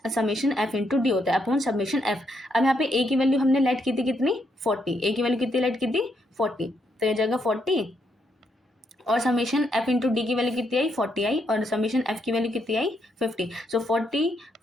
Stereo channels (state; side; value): normal; both; correlation 0.77